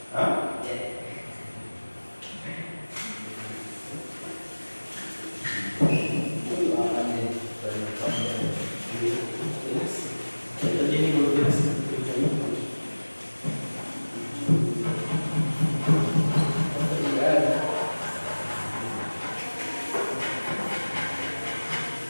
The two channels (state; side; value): inverted; both; correlation -1.00